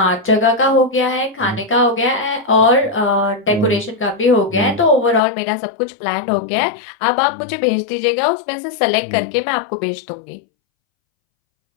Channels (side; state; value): right; drops out; at 5.2 s